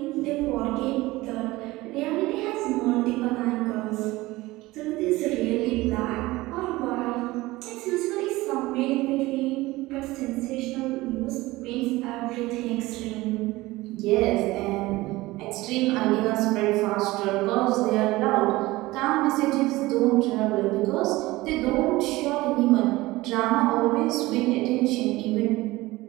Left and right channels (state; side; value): quieter; left; 19.5 dB